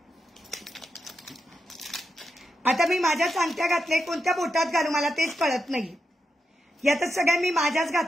आता मी माझ्याच अंगठ्या घातल्या. कोणत्या बोटात घालू मला तेच कळत नाही. यातच सगळ्या मी माझ्याच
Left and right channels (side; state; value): both; normal; correlation 0.86